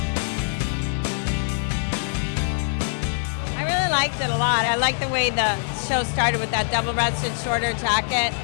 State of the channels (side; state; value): right; silent; digital silence